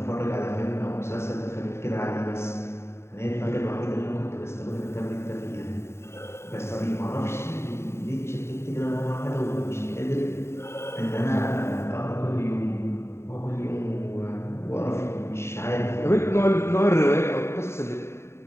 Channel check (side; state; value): right; late; 0.13 ms